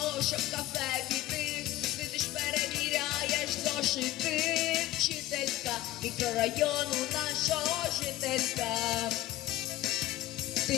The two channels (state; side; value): quieter; right; 15.5 dB